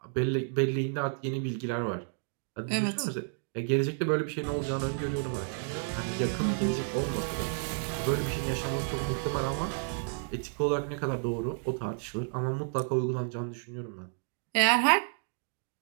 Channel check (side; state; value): left; silent; digital silence